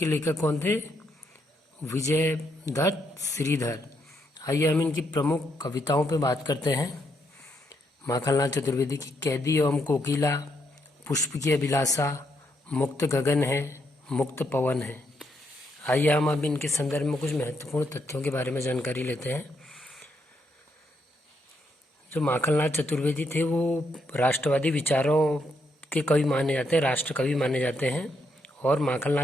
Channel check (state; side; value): normal; both; correlation 0.77